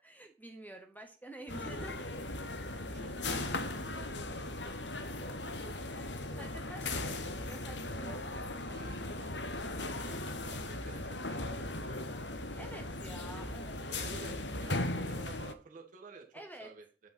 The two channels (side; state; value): both; normal; correlation 0.31